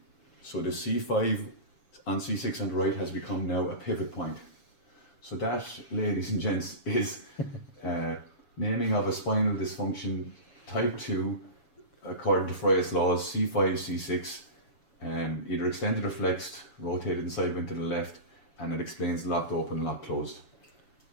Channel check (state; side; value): late; right; 7.1 ms